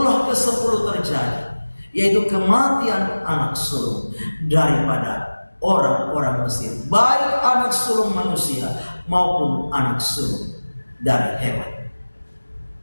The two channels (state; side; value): inverted; both; correlation -1.00